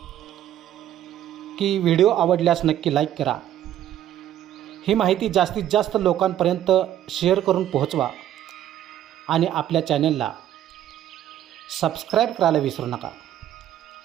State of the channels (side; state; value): left; quieter; 11.7 dB